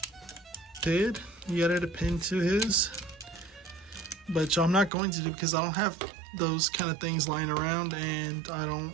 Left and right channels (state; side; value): drops out; left; at 4.9 s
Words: did. He added a pin to his, but I'm not going to do because I don't have those kind of things lying around, and I don't